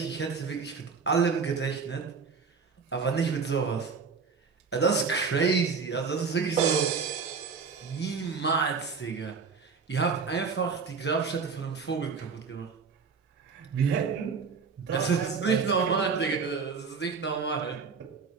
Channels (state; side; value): quieter; left; 5.4 dB